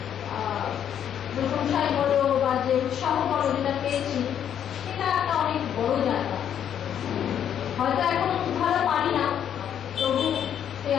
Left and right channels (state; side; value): quieter; right; 9.3 dB